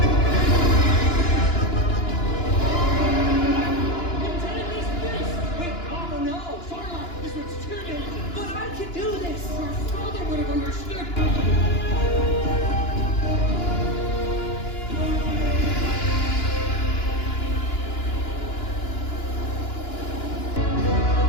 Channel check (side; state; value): right; late; 2.9 ms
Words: Wait, oh no! Sarlacc, this one's too dangerous. But I can do this! Your father would have understood.